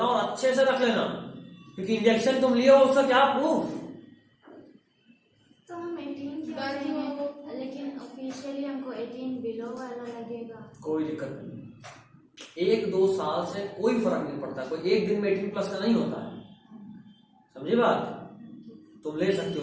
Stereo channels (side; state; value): both; identical; correlation 1.00